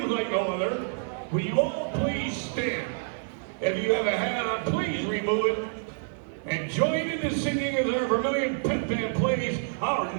like no other, will you all please stand? If you have a hat on, please remove it. And join in the singing as our Vermilion Pit Band plays our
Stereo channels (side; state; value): left; silent; 56 dB below the other